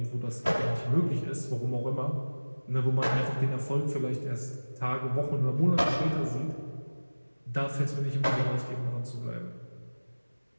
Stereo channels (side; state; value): both; inverted; correlation -1.00